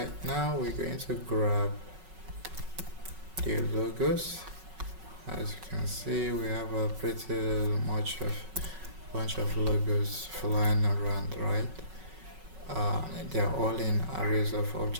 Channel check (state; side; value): late; left; 5.4 ms